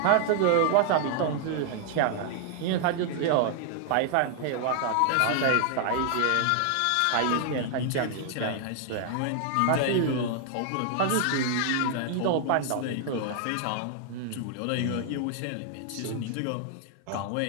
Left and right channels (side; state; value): both; different; correlation 0.00